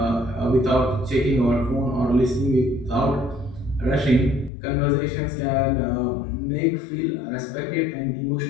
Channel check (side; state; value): right; drops out; at 4.5 s